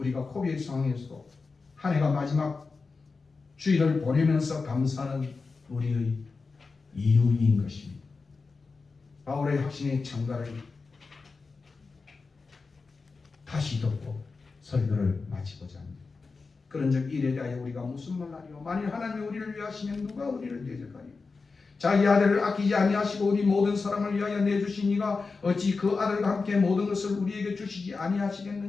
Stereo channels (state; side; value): quieter; right; 4.3 dB